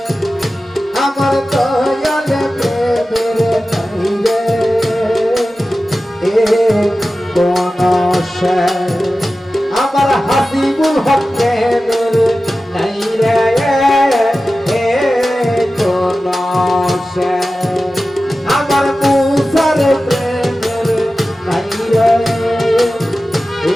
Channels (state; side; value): normal; both; correlation 0.95